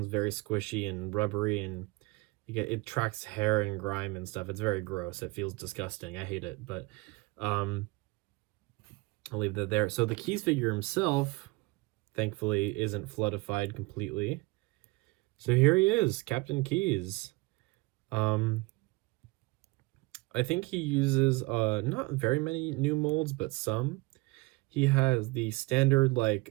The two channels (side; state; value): left; quieter; 23.6 dB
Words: very squishy and rubbery, and it tracks hair and grime and stuff. It's very gross. It feels disgusting. I hate it, but I'll leave that there. So the Keyes figure himself, thankfully, isn't floodified completely. So here he is, Captain Keyes. I think he uses not very many new molds, but some. He has the standard, like,